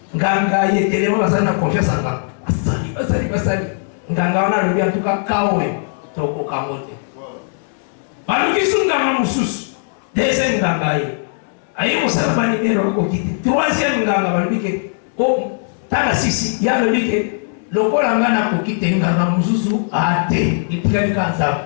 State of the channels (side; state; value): right; silent; digital silence